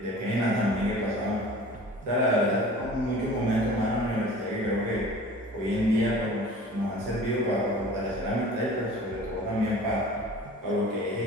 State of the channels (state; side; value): normal; both; correlation 0.43